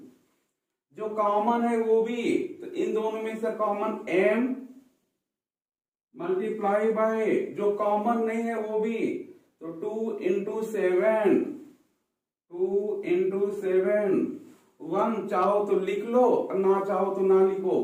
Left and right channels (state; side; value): identical; both; correlation 1.00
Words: जो कॉमन है वो भी, तो इन दोनों में से कॉमन m मल्टीप्लाई बाय जो कॉमन नहीं है वो भी, तो 2 इंटू 7, 2 इंटू 7, 1 चाहो तो लिख लो ना चाहो तो ना लिखो,